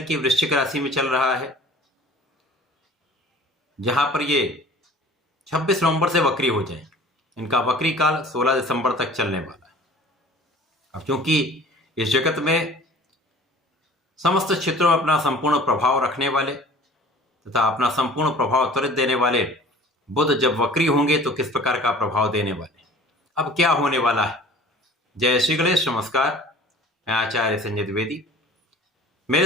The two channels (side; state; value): both; normal; correlation 0.47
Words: वृश्चिक राशि में चल रहा है, जहां पर ये 26 नवंबर से वक्री हो जाएंगे। इनका वक्री काल 16 दिसंबर तक चलने वाला है। अब क्योंकि इस जगत में समस्त क्षेत्रों में अपना संपूर्ण प्रभाव रखने वाले तथा अपना संपूर्ण प्रभाव त्वरित देने वाले बुध जब वक्री होंगे तो किस प्रकार का प्रभाव देने वाले, अब क्या होने वाला है। जय श्री गणेश, नमस्कार। मैं आचार्य संजय द्विवेदी।